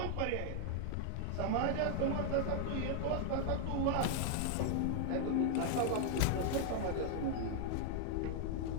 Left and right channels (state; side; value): different; both; correlation 0.00